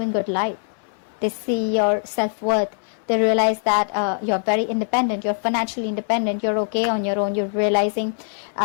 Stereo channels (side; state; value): right; silent; 64 dB below the other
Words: good light. They see your self-worth. They realize that you're very independent, you're financially independent, you're okay on your own. You're realizing